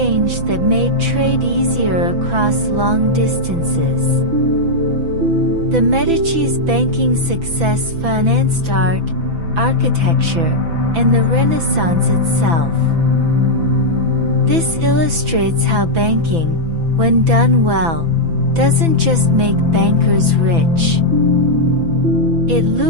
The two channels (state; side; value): late; left; 6.0 ms